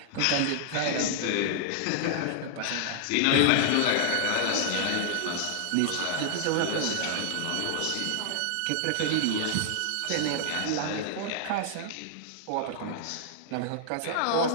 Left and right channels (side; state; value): both; different; correlation -0.01